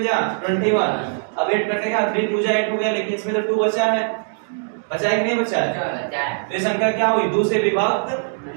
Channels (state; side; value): silent; left; 65 dB below the other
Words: जा 21। अब 8 कटेगा 3 2 जा 8 हो गया, लेकिन इसमें तो 2 बचा है बचा है कि नहीं बचा है? बचा है। तो ये संख्या क्या हुई? 2 से विभक्त